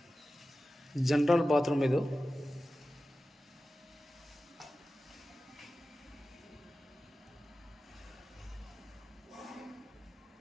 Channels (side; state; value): both; normal; correlation 0.95